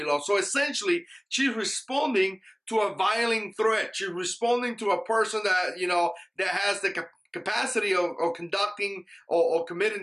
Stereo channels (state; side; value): identical; both; correlation 1.00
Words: So essentially, she's responding to a violent threat. She's responding to a person that, that has the capacity of conducting or